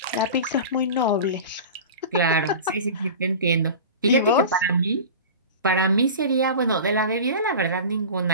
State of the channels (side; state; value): both; inverted; correlation -0.33